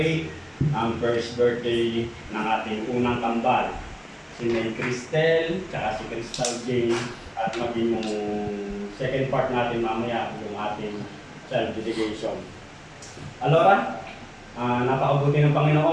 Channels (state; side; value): identical; both; correlation 1.00